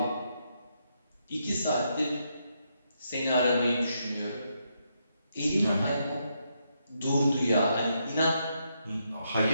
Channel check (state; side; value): inverted; both; correlation -0.79